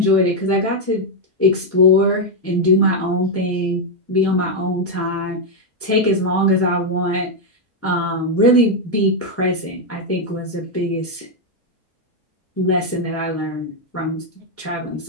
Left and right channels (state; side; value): normal; both; correlation 0.01